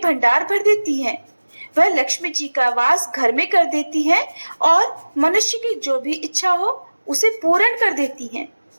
भंडार भर देती हैं। वह लक्ष्मी जी का वास घर में कर देती हैं और मनुष्य की जो भी इच्छा हो उसे पूर्ण कर देती हैं।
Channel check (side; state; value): both; inverted; correlation -1.00